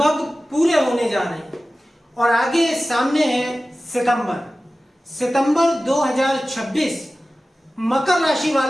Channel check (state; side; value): normal; both; correlation 0.96